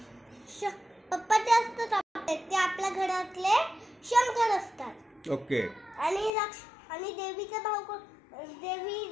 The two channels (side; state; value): right; drops out; at 6.3 s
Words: पप्पा ते असतात ते आपल्या घरातले शंकर असतात. ओके. आणि देवीचा भाऊ